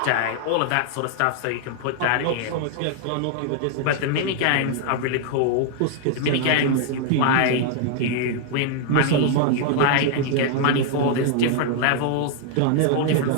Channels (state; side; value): different; both; correlation 0.00